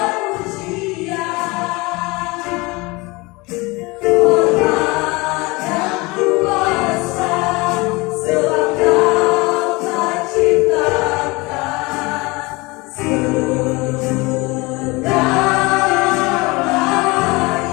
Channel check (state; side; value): quieter; right; 24.3 dB